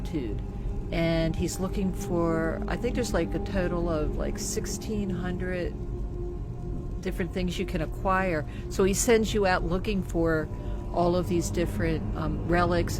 and he's looking for, I think there's like a total of like 1,600 different things you can acquire. So he sends you out looking for all of these different relics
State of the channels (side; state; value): both; identical; correlation 1.00